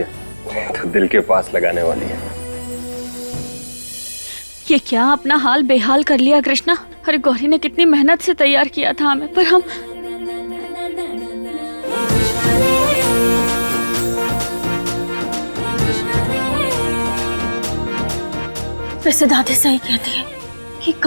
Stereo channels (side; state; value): both; inverted; correlation -1.00